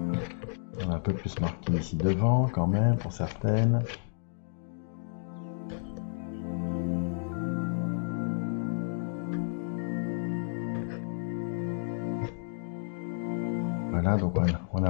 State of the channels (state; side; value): silent; right; digital silence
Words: On a un peu plus marqué ici devant quand même pour certaines. Voilà, donc on